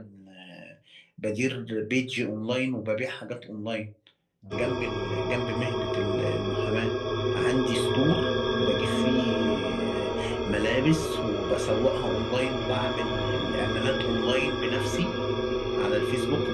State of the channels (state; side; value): identical; both; correlation 1.00